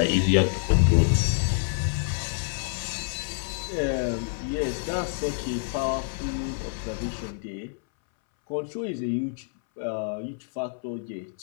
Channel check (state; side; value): silent; right; 60 dB below the other